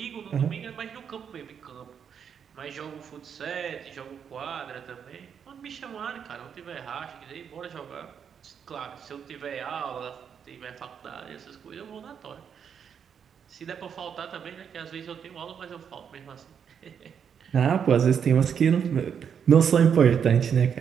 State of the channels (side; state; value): left; quieter; 7.6 dB